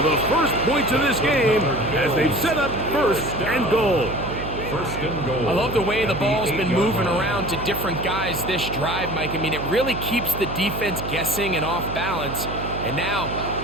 the first points of this game as they've set up 1st and goal. 1st and goal. I love the way the ball's been moving around to different guys this drive, Mike. I mean, it really keeps the defense guessing and off balance. And now,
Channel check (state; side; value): noise; right; hum, 7 dB below the sound